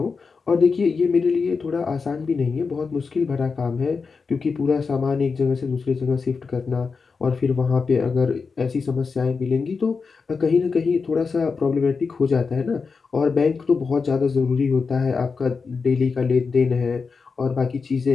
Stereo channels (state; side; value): quieter; right; 4.9 dB